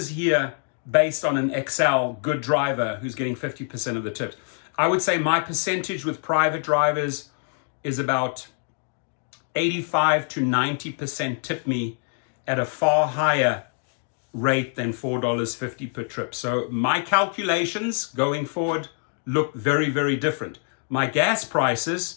here based on an Excel good driver who's getting 50% of the tips. I would say my percentage with private drivers is about 85 to 90% tip me at a far higher rate than $4.50 per trip. So my calculations going forward look very, very different. My gas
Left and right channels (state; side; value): silent; right; 58 dB below the other